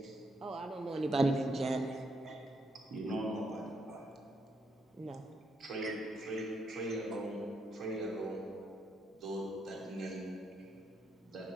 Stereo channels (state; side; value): normal; both; correlation 0.77